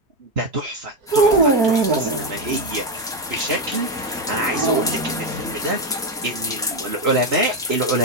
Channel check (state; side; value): normal; both; correlation 0.08